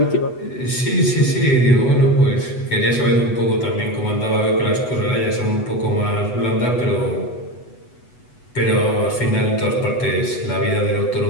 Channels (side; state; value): right; late; 8.1 ms